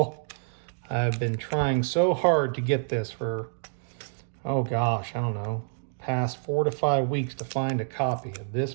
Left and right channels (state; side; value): silent; left; digital silence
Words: I've been trying so hard to get this for, oh gosh, I don't know, past 4 to 5 weeks to find a copy of this